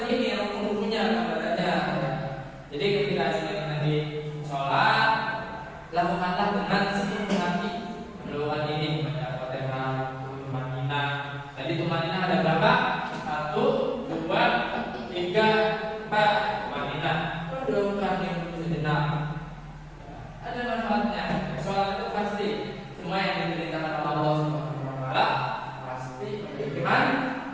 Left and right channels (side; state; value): both; identical; correlation 1.00